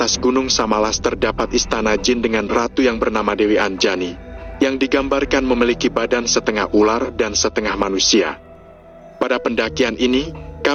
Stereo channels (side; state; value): both; identical; correlation 1.00